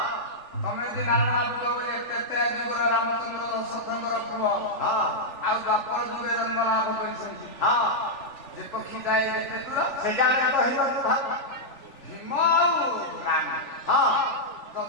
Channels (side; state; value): right; late; 3.4 ms